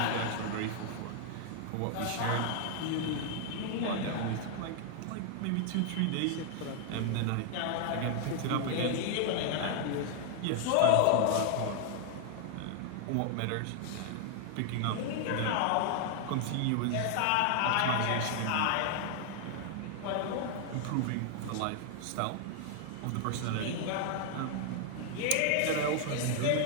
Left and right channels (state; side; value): different; both; correlation 0.00